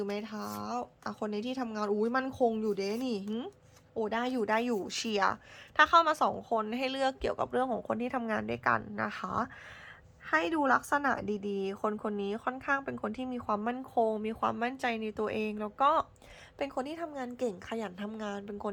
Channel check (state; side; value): identical; both; correlation 1.00